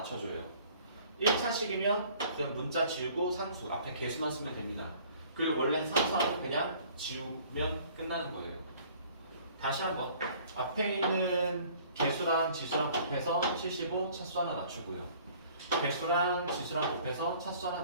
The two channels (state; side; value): inverted; both; correlation -0.54